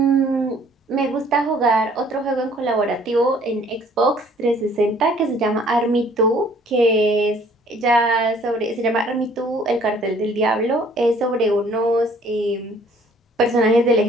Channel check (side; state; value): both; normal; correlation 0.57